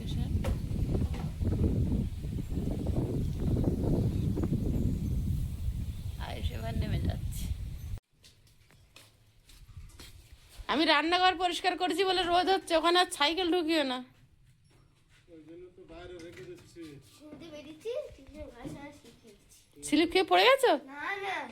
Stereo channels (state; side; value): identical; both; correlation 1.00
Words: আয়ুষ এবার নেমে যাচ্ছে। আমি রান্নাঘর পরিষ্কার করেছি বলে রোদ হচ্ছে, ওখানে আর সাইকেল ঢুকিও না। স্লিপ খেয়ে পড়ে গেছো?